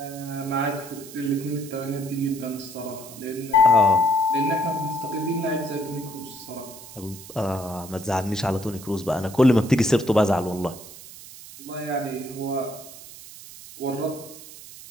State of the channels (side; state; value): right; noise; hiss, 16 dB below the sound